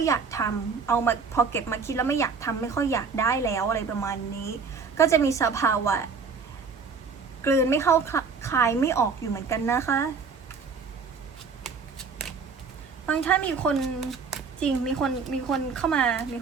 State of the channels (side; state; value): left; quieter; 5.2 dB